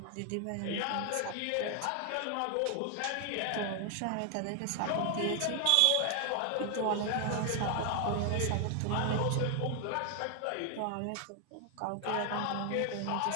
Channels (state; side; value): different; both; correlation 0.00